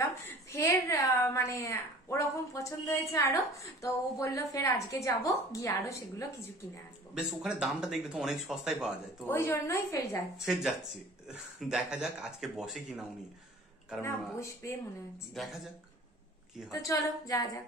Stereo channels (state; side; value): normal; both; correlation 0.46